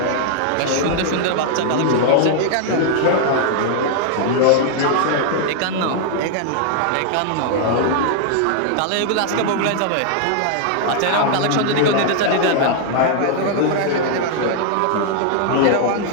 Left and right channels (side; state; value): both; different; correlation 0.00